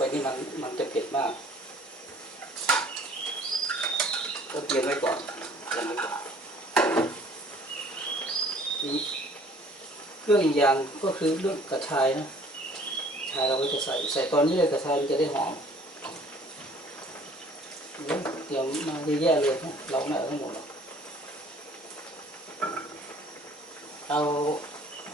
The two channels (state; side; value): normal; both; correlation 0.54